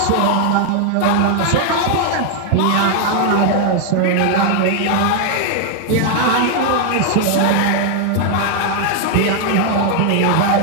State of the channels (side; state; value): both; different; correlation 0.00